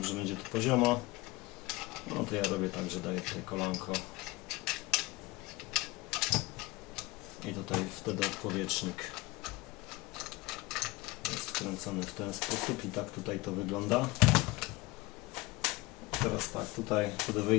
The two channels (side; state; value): right; quieter; 21.6 dB